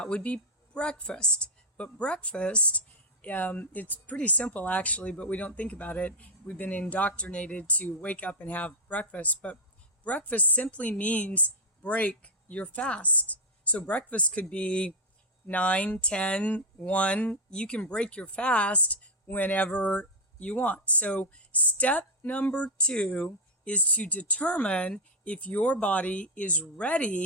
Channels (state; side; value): normal; both; correlation 0.02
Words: would be breakfast. But breakfast, it's pretty simple actually, but we don't think about it. We've been indoctrinated to wake up and have breakfast, but breakfast simply means break your fast. So breakfast could be 9, 10, 1. You can break your fast whenever you want. So step number 2 is to determine if your body is